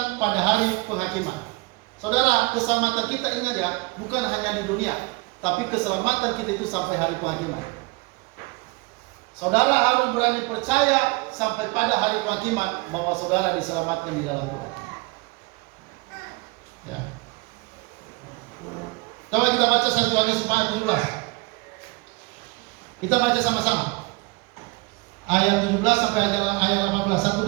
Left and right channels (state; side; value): quieter; left; 26.0 dB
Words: pada hari penghakiman. Saudara, keselamatan kita, ingat ya, bukan hanya di dunia, tapi keselamatan kita itu sampai hari penghakiman. Saudara harus berani percaya sampai pada hari penghakiman bahwa saudara diselamatkan di dalam Tuhan. Ya. Coba kita baca 1 Yohanes 4:17. Kita baca sama-sama. Ayat 17 sampai ayat 18, 1